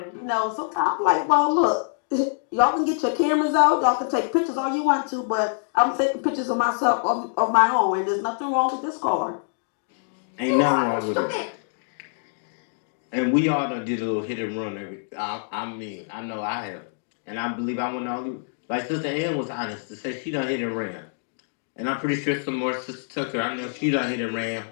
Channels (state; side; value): silent; right; 62 dB below the other